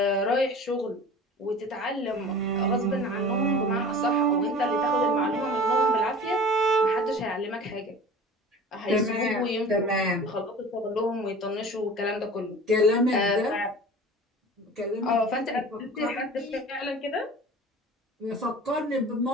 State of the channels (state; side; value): normal; both; correlation 0.40